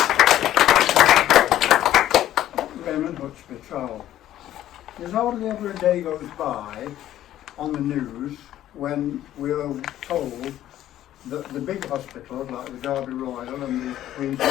Raymond Hutchby, Trowell. There's hardly ever a day goes by on the news when we're told that the big hospitals like the Derby Royal and the Queen's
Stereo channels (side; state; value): right; quieter; 12.7 dB